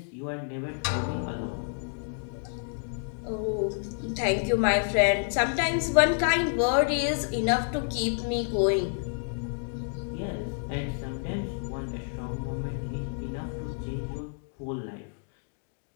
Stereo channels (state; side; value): silent; right; digital silence